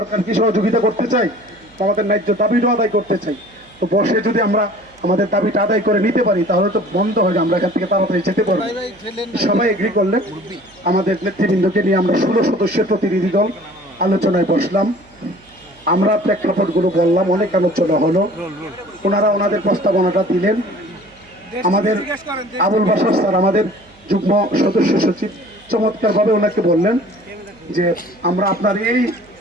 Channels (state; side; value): noise; right; hum, 29 dB below the sound